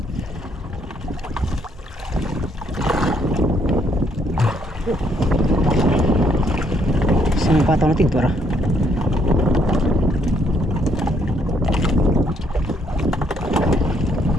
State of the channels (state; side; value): normal; both; correlation 0.70